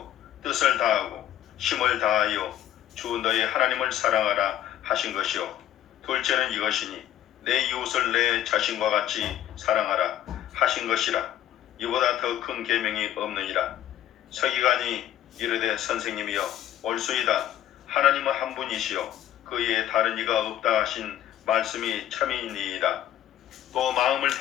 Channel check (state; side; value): quieter; right; 12.0 dB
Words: 뜻을 다하고 힘을 다하여 주 너의 하나님을 사랑하라 하신 것이요. 둘째는 이것이니 내 이웃을 내 자신과 같이 사랑하라 하신 것이라. 이보다 더 큰 계명이 없느니라. 서기관이 이르되 선생님이여 옳소이다. 하나님은 한 분이시요 그 외에 다른 이가 없다 하신 말씀이 참이니이다. 또 마음을